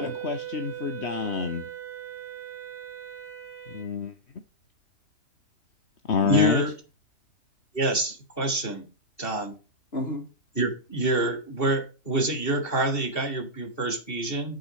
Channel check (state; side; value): late; right; 2.7 ms